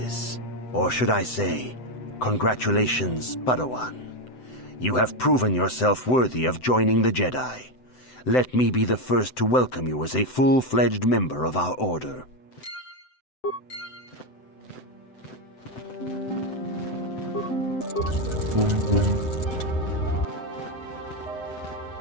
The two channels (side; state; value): right; late; 7.9 ms